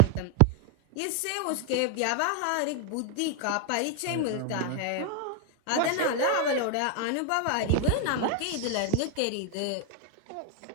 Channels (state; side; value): different; both; correlation 0.00